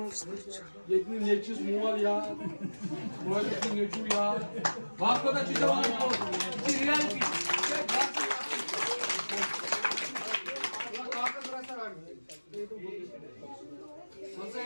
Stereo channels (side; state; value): both; inverted; correlation -1.00